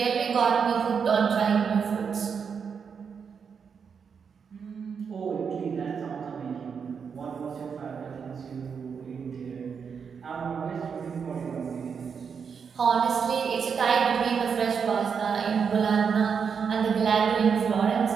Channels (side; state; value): left; quieter; 6.4 dB